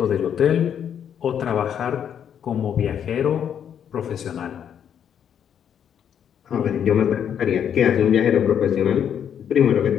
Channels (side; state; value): right; quieter; 8.7 dB